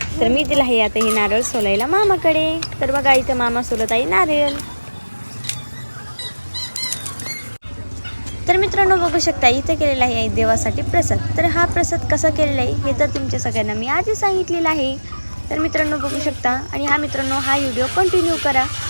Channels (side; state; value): both; inverted; correlation -1.00